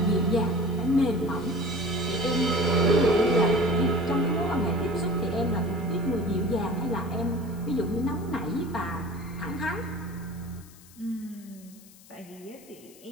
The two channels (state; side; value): noise; left; hiss, 23 dB below the sound